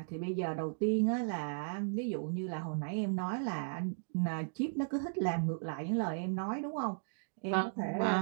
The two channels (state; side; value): silent; left; digital silence